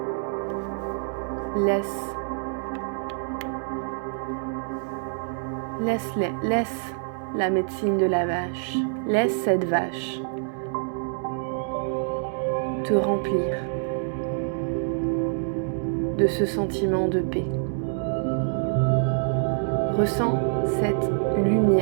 Laisse la médecine de la vache, laisse cette vache te remplir de ce sentiment de paix. Ressens cette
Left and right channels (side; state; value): left; silent; digital silence